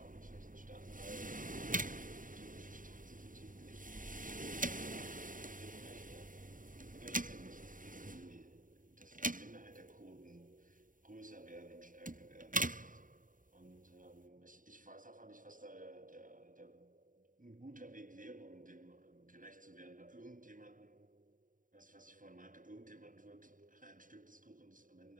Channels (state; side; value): late; left; 0.39 ms